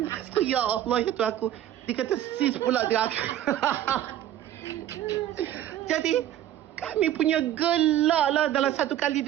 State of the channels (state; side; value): quieter; left; 12.0 dB